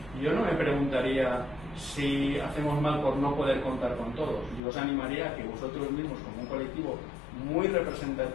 yo no me preguntaría si hacemos mal por no poder contar con todos. Yo os animaría a que vosotros mismos, como un colectivo muy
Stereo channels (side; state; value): right; drops out; at 4.6 s